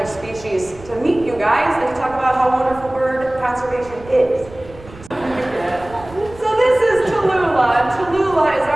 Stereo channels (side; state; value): right; noise; rumble, 19 dB below the sound